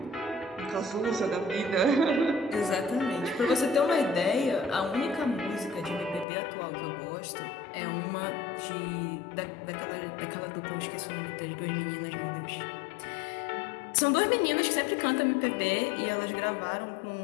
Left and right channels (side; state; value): right; drops out; at 6.2 s